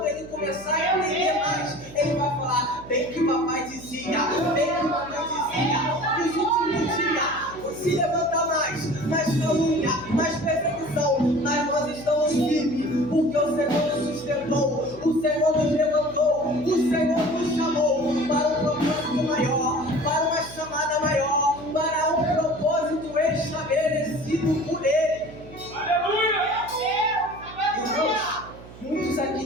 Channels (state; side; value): noise; right; hum, 18 dB below the sound